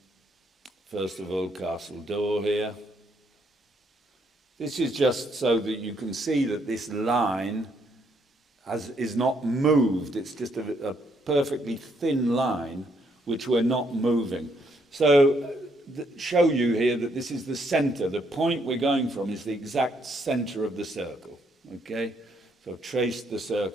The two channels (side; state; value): both; normal; correlation 0.72